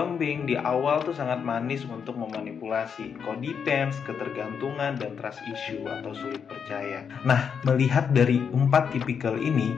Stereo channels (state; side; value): quieter; right; 6.9 dB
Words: di awal tuh sangat manis untuk memanipulasi, codependence, ketergantungan, dan trust issue atau sulit percaya. Nah, melihat dari 4 tipikal ini,